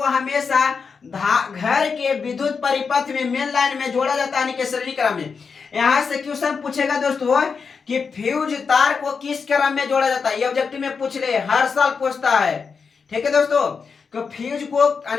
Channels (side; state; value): right; quieter; 5.5 dB